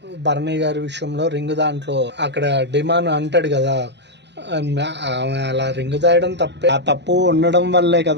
భరణి గారి విషయంలో రింగ్ దాంట్లో అక్కడ డిమాండ్ అంటాడు కదా, అలా రింగ్ దాయడం తప్పే, ఆ తప్పు ఉండడం వల్లే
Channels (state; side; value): late; left; 0.51 ms